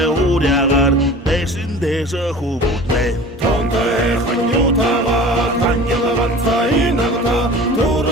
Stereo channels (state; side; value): normal; both; correlation 0.40